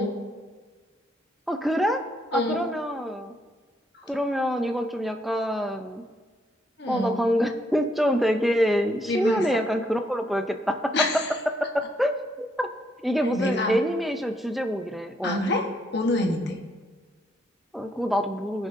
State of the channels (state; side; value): normal; both; correlation 0.74